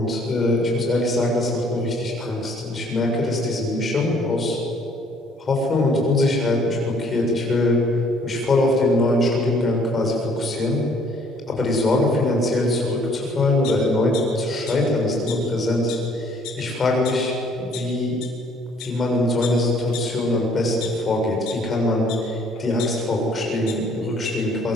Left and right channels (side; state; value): both; normal; correlation 0.60